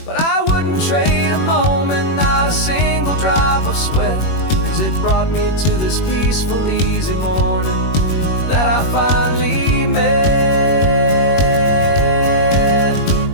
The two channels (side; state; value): right; late; 21 ms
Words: But I wouldn't trade a moment, not a single drop of sweat, 'cause it brought me to this peaceful, easy morning that I finally met.